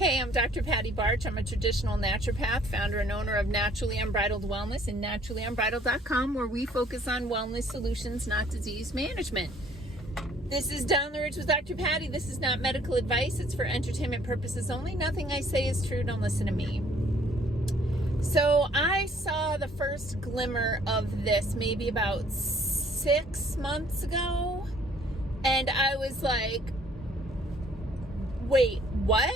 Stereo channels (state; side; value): normal; both; correlation 0.59